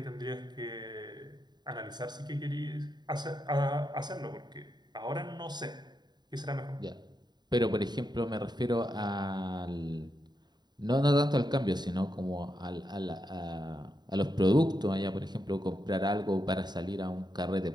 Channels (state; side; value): late; left; 0.21 ms